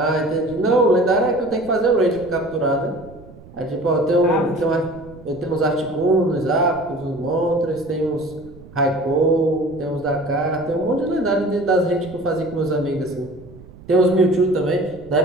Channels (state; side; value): noise; right; rumble, 20 dB below the sound